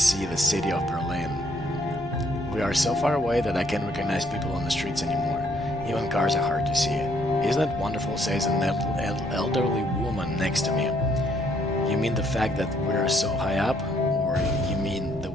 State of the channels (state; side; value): normal; both; correlation 0.68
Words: the city of Berlin. We are so far away that I can't recognize people on the streets anymore. Even cars are hard to see. Isn't it wonderful, says an elderly woman next to me. You mean the fact that we're so high up? Or you mean the